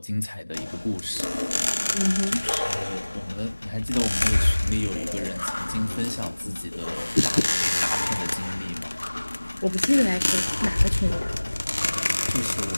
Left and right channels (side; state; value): both; inverted; correlation -1.00